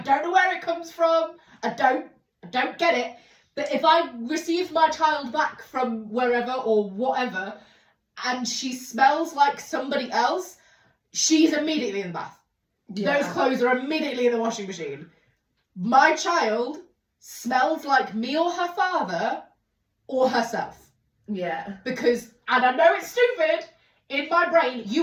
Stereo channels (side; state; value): both; identical; correlation 1.00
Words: know where it comes from. I don't get it. But if I receive my child back from wherever or whatever, and she smells like somebody else, she's immediately in the bath. Yeah. Those clothes are immediately in the washing machine. My child smells like me or her father or herself. Yeah. Because, and I know it's stupid, in my brain,